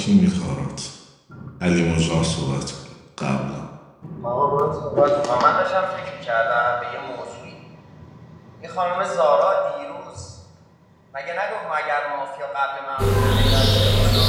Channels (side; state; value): both; identical; correlation 1.00